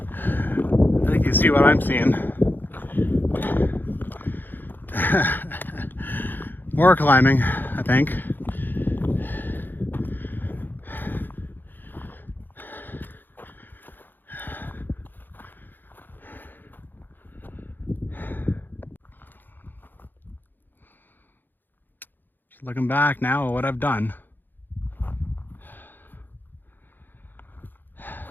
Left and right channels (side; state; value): right; late; 0.091 ms